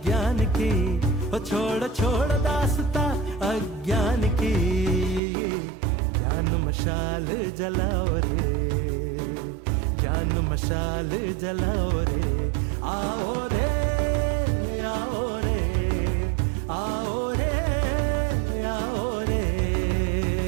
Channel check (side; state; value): left; drops out; at 5.2 s